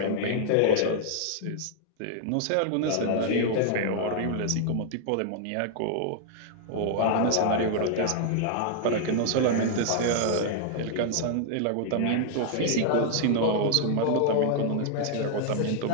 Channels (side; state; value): both; different; correlation -0.01